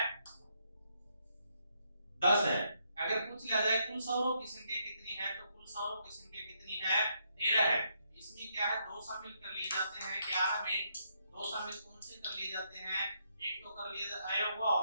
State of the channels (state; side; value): inverted; both; correlation -0.76